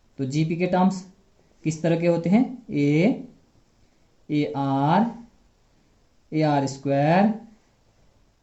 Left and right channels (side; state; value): both; identical; correlation 1.00